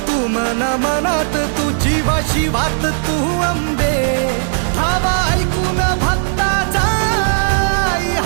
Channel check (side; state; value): left; silent; digital silence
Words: तू मना मनात तू जीवाशी वात तू अंबे धावा ऐकून भक्ताचा आई